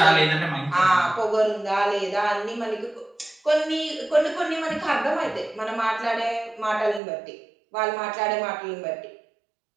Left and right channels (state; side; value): drops out; left; at 7.0 s